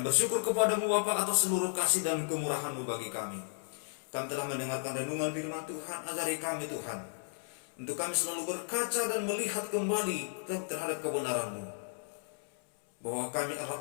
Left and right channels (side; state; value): right; silent; 55 dB below the other